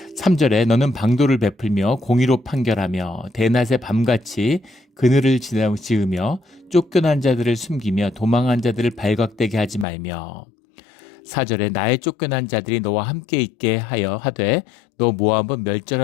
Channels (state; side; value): drops out; right; at 9.9 s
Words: 3절에 너는 방도를 베풀며 공의로 판결하며 대낮에 밤같이 그늘을 지으며 쫓겨난 자들을 숨기며 도망한 자들을 발각되게 하지 말며 4절에 나의 쫓겨난 자들이 너와 함께 있게 하여 하되 너 모압은